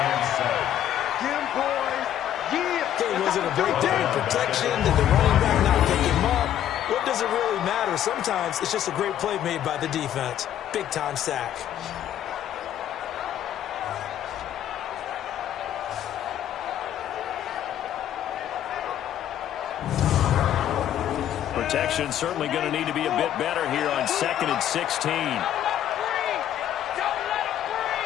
Okay, was it a breakdown in protection? Did the running back not pick him up? What does it really matter? Sometimes it's just a great play made by the defense. Big-time sack. Protection certainly going to need to be a bit better here on 2nd and 16.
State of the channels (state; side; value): quieter; right; 11.1 dB